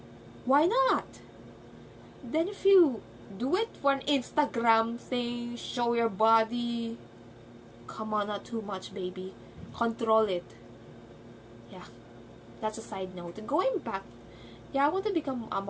why not? Then if you do it for an Instagram thing, show your body, come on, not too much, baby. Control it. Yeah, that's a side note. And going back, yeah, I want to become a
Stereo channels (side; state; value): both; identical; correlation 1.00